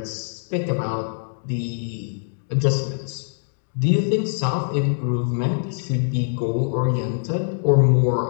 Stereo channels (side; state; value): right; silent; digital silence